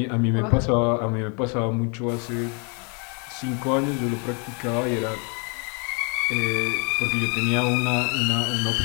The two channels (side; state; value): right; quieter; 36.5 dB